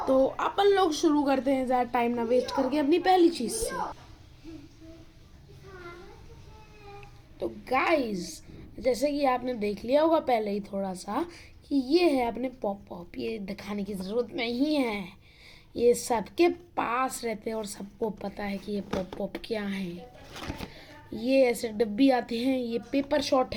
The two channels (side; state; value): both; identical; correlation 1.00